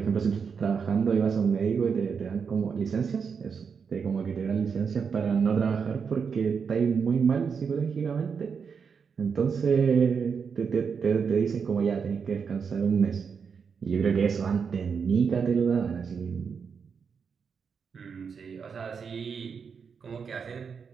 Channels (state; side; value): quieter; left; 6.1 dB